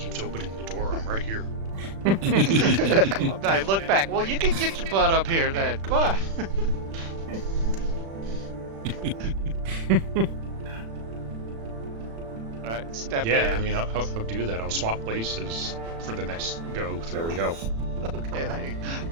opening the door. I'm right here. I look back. Well, you can get your butt up here then. Come on. All right, step Yeah, in. I mean, I'll do that. I'll swap places for the next go through. There we go. Okay, then.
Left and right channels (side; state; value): left; late; 36 ms